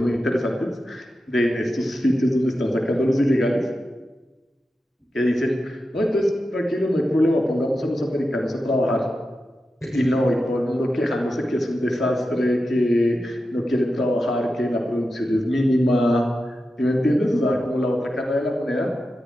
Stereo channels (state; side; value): normal; both; correlation 0.90